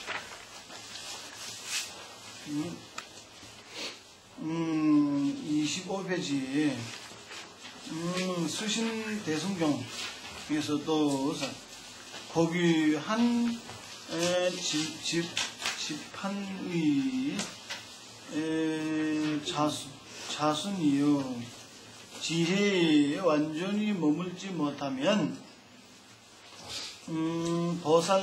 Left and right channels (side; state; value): both; identical; correlation 1.00